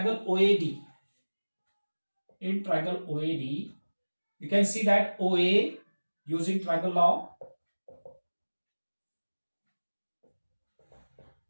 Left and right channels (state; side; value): inverted; both; correlation -1.00